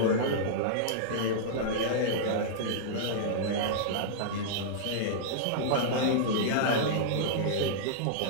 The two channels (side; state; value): both; different; correlation -0.02